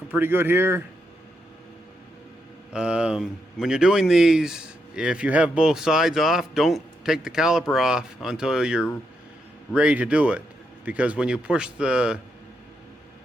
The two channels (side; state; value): both; normal; correlation 0.81